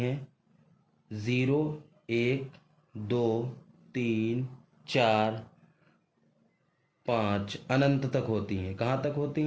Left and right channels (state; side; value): identical; both; correlation 1.00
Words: 0, 1, 2, 3, 4, 5, अनंत तक होती हैं। कहाँ तक होती